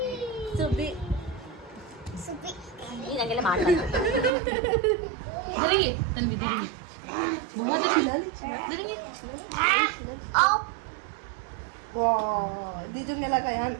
धरेंगे तन्वी धरेंगे बहुत धरेंगे दीदू ने लगा यार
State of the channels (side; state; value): left; drops out; at 4.3 s